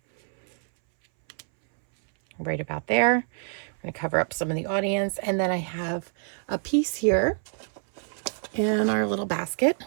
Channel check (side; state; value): left; silent; 61 dB below the other